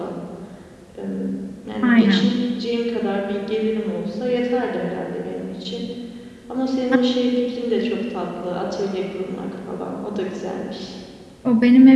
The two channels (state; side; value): identical; both; correlation 1.00